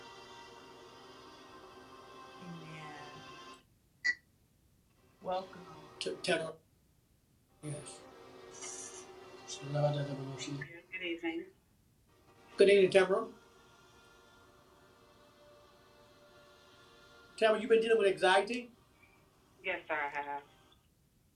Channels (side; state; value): both; identical; correlation 1.00